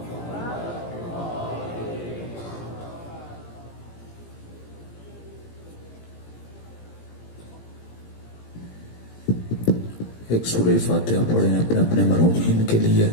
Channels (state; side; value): late; right; 17 ms